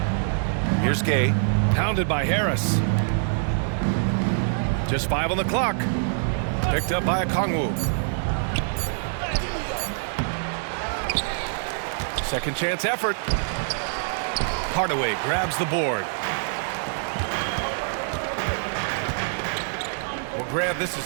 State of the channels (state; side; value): silent; left; digital silence